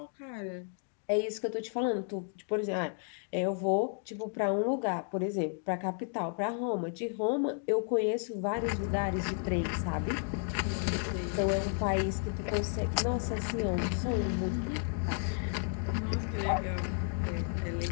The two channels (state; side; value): silent; right; 56 dB below the other